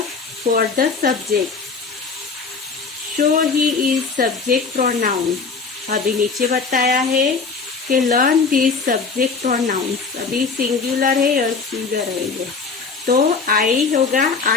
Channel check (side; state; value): right; quieter; 4.8 dB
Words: for the subject. So he is subject pronoun. अभी नीचे बताया है कि लर्न दिस सब्जेक्ट प्रोनाउंस. अभी सिंगुलर है और सिंगुलर है ये. तो आई होगा,